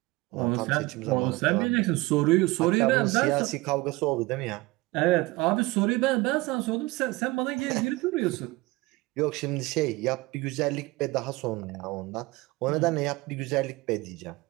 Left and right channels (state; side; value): quieter; left; 21.8 dB